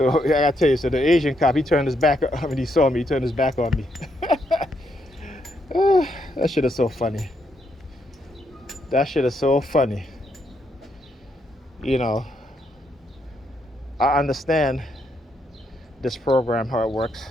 I gotta tell you, so the Asian cop, he turned his back when he saw me, he turned his back on me. That shit is so funny. That shit is so funny. You know, I understand this program, how it works.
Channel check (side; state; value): both; normal; correlation 0.77